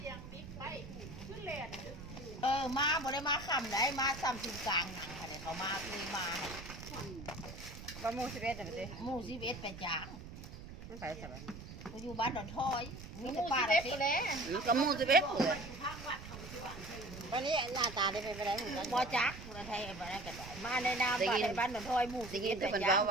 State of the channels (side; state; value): right; noise; rumble, 12 dB below the sound